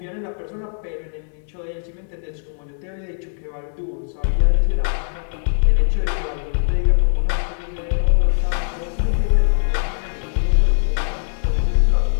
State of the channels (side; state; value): right; silent; digital silence